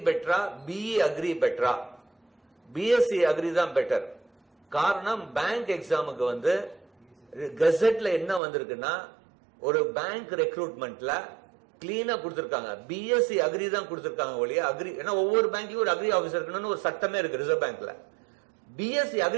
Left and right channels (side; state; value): left; drops out; at 8.4 s